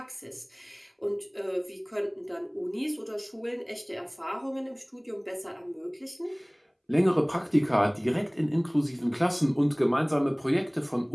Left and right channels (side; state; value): both; identical; correlation 1.00